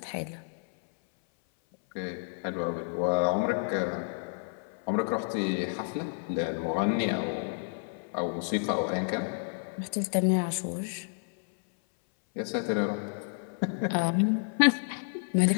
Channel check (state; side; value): silent; right; 58 dB below the other